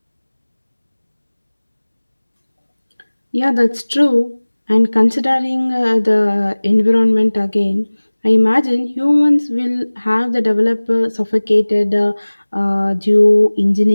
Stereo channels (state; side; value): inverted; both; correlation -1.00